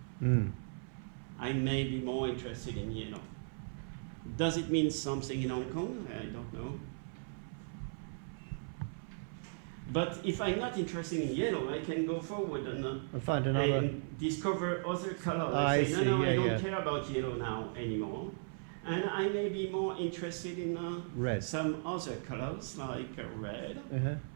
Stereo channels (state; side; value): silent; left; 53 dB below the other